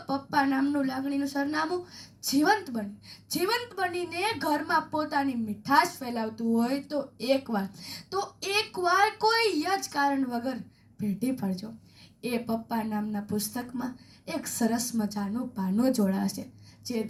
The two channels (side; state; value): both; identical; correlation 1.00